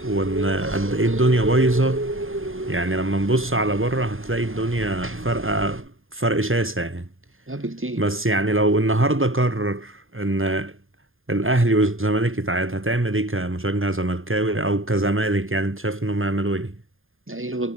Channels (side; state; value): left; late; 0.59 ms